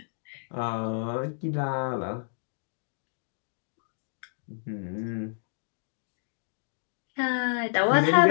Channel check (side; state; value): right; silent; digital silence